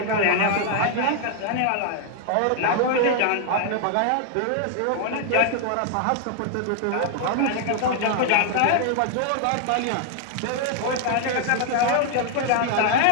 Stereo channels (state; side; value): different; both; correlation 0.00